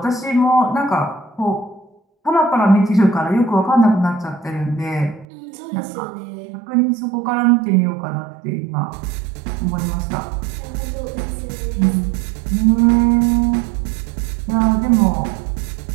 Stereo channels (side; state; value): left; drops out; at 5.2 s